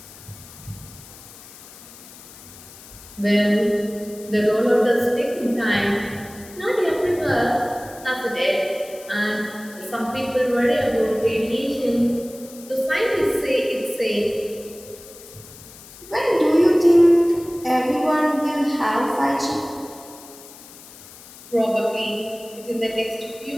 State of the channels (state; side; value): noise; left; hiss, 19 dB below the sound